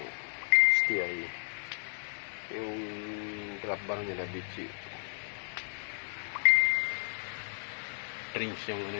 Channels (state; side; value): silent; right; 56 dB below the other